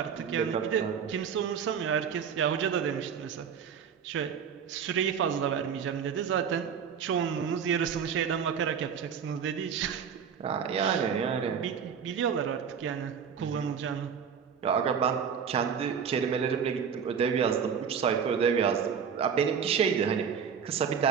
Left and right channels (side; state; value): left; quieter; 7.2 dB